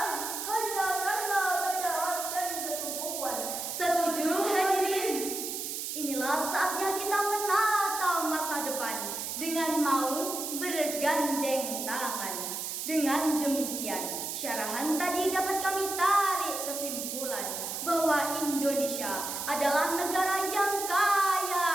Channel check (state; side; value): noise; right; hiss, 4 dB below the sound